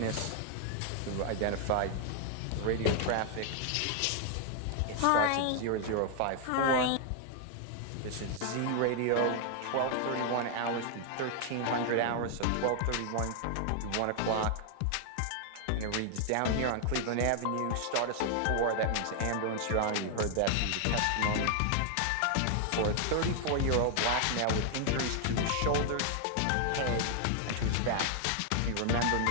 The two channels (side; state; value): both; different; correlation 0.00